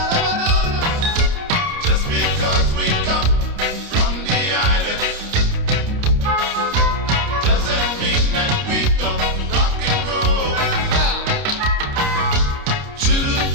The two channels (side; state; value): left; late; 29 ms